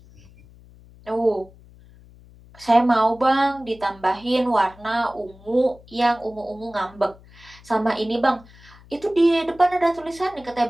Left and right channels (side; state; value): left; noise; hum, 24 dB below the sound